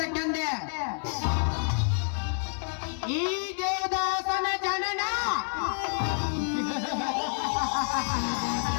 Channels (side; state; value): right; silent; 58 dB below the other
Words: ಈ ದೇವದಾಸನ ಜನನ